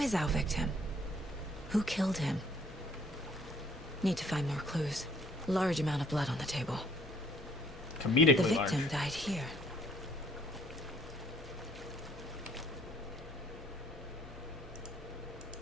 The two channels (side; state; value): both; normal; correlation 0.62